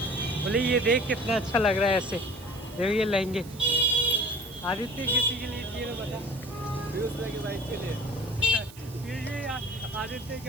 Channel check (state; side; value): noise; right; hiss, 20 dB below the sound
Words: बोले ये देख कितना अच्छा लग रहा है ऐसे, देखो ये लहंगे। आदित्य किसी के लिए चाहिए तो बता। की बाइक के लिए, ये आदित्य